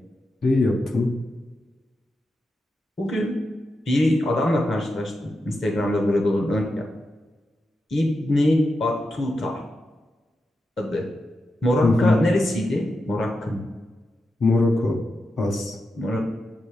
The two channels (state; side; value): normal; both; correlation 0.88